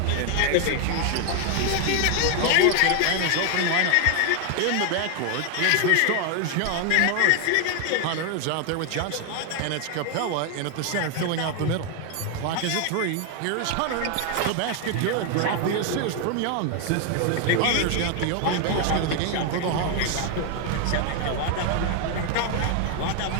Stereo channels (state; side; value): different; both; correlation 0.01